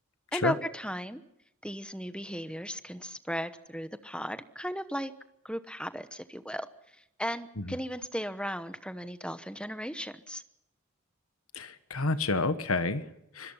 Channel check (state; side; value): normal; both; correlation 0.48